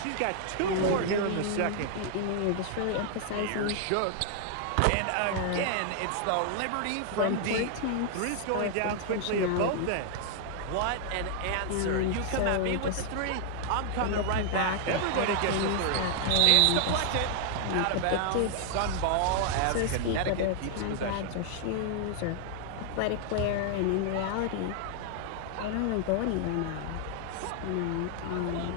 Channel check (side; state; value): both; different; correlation 0.00